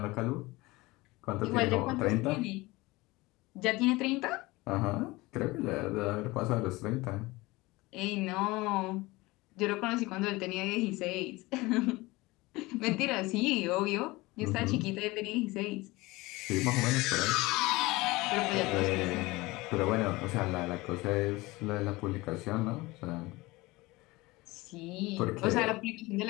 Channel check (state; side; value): quieter; right; 21.4 dB